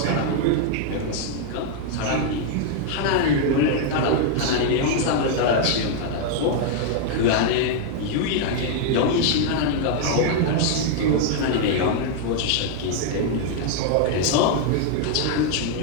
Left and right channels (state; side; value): different; both; correlation 0.00